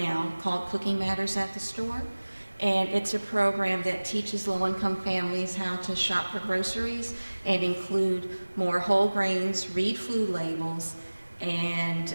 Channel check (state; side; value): inverted; both; correlation -1.00